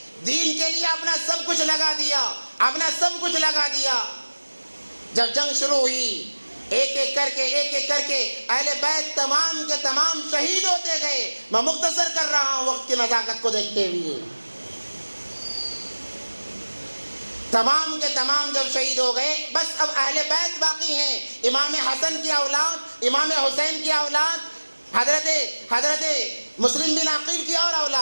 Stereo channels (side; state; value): both; inverted; correlation -1.00